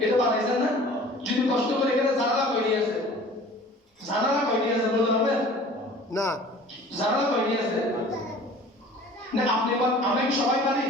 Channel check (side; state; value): both; normal; correlation 0.46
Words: এটা বানাইছেন না? যদি কষ্ট করে এখানে জানালা কয়টি আছে? জানালা কয়টি আছে বলতে পারবেন? না। জানালা কয়টি আছে? না আপনি আমি সবাই পারি